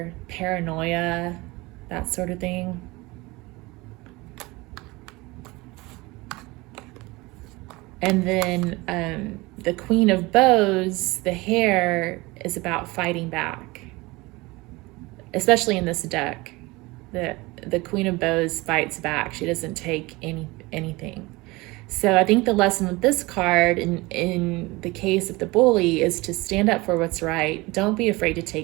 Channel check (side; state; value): left; quieter; 22.6 dB